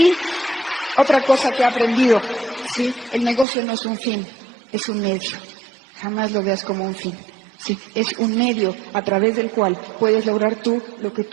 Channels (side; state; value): left; drops out; at 3.5 s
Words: otra cosa que he aprendido, ¿sí? El negocio no es un fin, es un medio. Jamás lo veas como un fin. Sí, es un medio a través del cual puedes lograr tú lo que